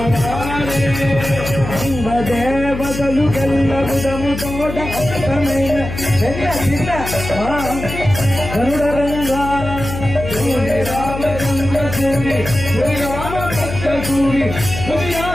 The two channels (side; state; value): left; noise; hum, 8 dB below the sound